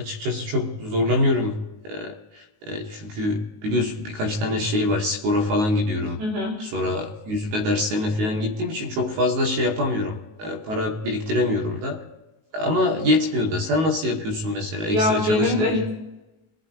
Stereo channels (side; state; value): left; late; 19 ms